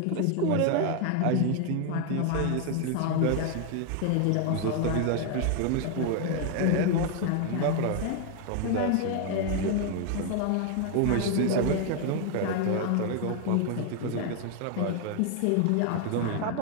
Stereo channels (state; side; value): different; both; correlation 0.00